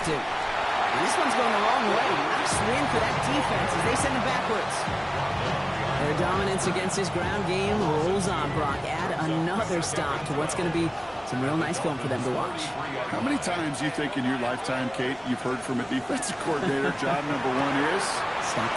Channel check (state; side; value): identical; both; correlation 1.00